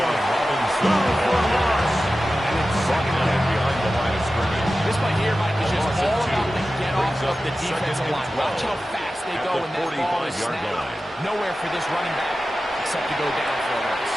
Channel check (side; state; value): both; normal; correlation 0.94